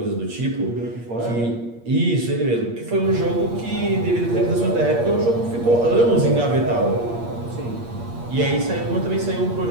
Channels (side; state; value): left; late; 8.5 ms